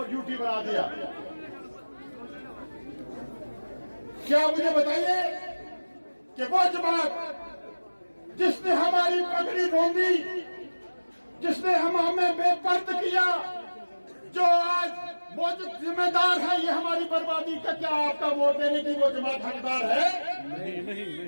यूटी बना दिया। क्या मुझे बताइए कि वो जमात जिसने हमारी पगड़ी रोंदी, जिसने हमें बेपर्द किया, जो आज मौजूद जिम्मेदार है ये हमारी बर्बादी का, क्या आपका वोट देने की वो जमात हकदार है? नहीं।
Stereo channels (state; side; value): inverted; both; correlation -1.00